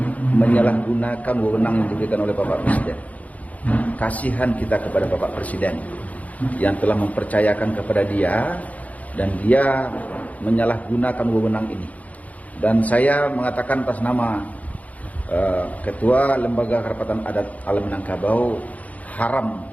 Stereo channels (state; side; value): late; right; 0.072 ms